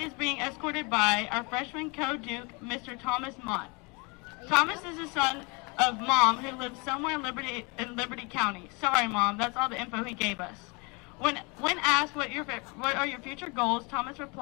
being escorted by our freshman co-duke, Mr. Thomas Mott. Thomas is the son of Mom, who lives somewhere in Liberty County. Sorry, Mom, that's all the info he gave us. When asked what are your future goals, Thomas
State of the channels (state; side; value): quieter; right; 29.9 dB